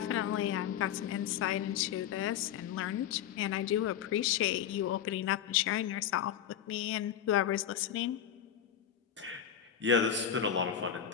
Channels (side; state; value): right; quieter; 9.3 dB